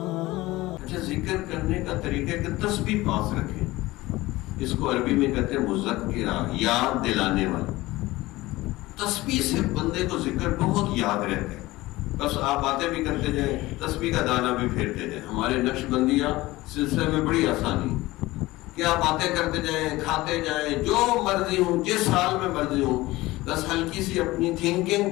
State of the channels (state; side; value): quieter; right; 19.0 dB